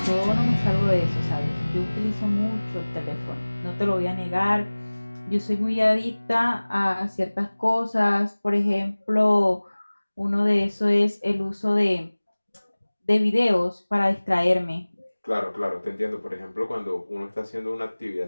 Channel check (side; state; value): both; inverted; correlation -1.00